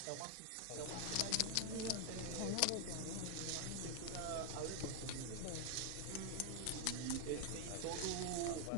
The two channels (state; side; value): different; both; correlation 0.00